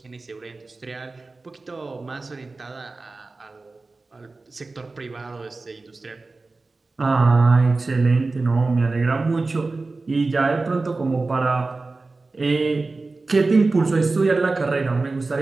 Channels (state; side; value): quieter; left; 3.6 dB